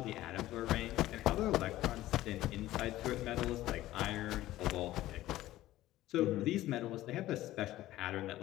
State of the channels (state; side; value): quieter; right; 15.4 dB